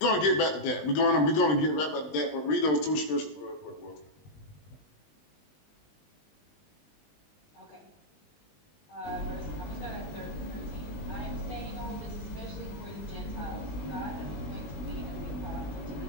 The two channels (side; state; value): right; late; 20 ms